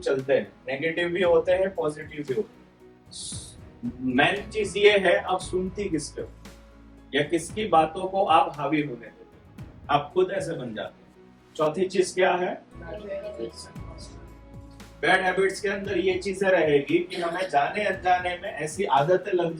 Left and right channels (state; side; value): identical; both; correlation 1.00